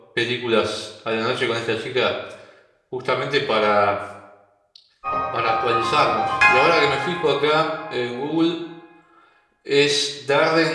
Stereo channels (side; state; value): both; identical; correlation 1.00